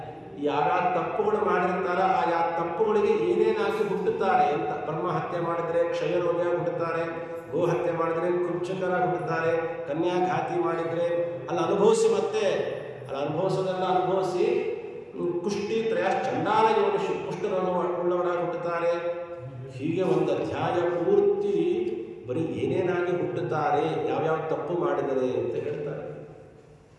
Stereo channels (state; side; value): identical; both; correlation 1.00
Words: ಯಾರ್ಯಾವ ತಪ್ಪುಗಳು ಮಾಡಿರ್ತಾರ ಆ ತಪ್ಪುಗಳಿಗೆ ಏನೇನಾಗಿ ಹುಟ್ಟುತ್ತಾರೆ ಅಂತ. ಬ್ರಹ್ಮ ಹತ್ಯೆ ಮಾಡಿದರೆ ಕ್ಷಯರೋಗ ಹುಟ್ಟುತ್ತಾರೆ, ಗೋ ಹತ್ಯೆ ಮಾಡಿದರೆ ಕೃಚ್ಛಕರಾಗಿ ಹುಟ್ಟುತ್ತಾರೆ, ಕನ್ಯಾಘಾತಿ ಮಾಡಿದರೆ ಅಲ್ಲಿ ಅನುಭವಿಸಿ, ಮತ್ತೆ ಅಲ್ಲಿ ಅನುಭವಿಸೋದೆಲ್ಲ ಅನುಭವಿಸಿ ಕುಷ್ಟಿ ತ್ರಯ ಚಂಡಾಲ ಯೋನಿಷು ಕುಷ್ಠರೋಗ ಉಳ್ಳವರಾಗಿ ಹುಟ್ಟುತ್ತಾರೆ. ಹೀಗೆ ಒಂದು ಅಧ್ಯಾಯ ಪೂರ್ತಿ ಬರೀ ಏನೇನಾಗಿ ಹುಟ್ಟುತ್ತಾರೆ, ಯಾವ್ಯಾವ ತಪ್ಪು ಮಾಡಿದರೆ ಅಂತ ಹೇಳ್ತಾರೆ.